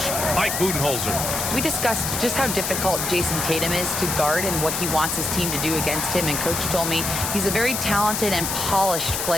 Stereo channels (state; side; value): noise; left; hiss, 2 dB below the sound